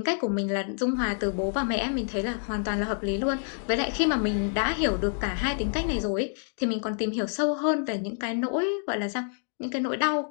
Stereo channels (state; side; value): silent; right; 60 dB below the other